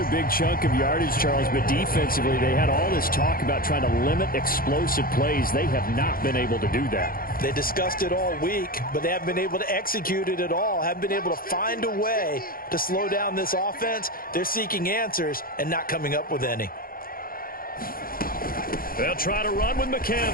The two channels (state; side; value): late; right; 0.42 ms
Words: big chunk of yardage, Charles, but defensively, they had all this talk about trying to limit explosive plays. They have not been able to do that. They discussed it all week, but they haven't been able to execute it at all, haven't been able to find a way to slow down this offense. They're seeking answers and not coming up with any. They'll try to run with